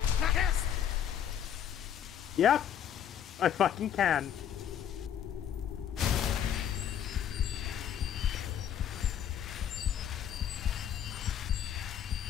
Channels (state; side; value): quieter; right; 9.5 dB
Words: Yep! I fucking can.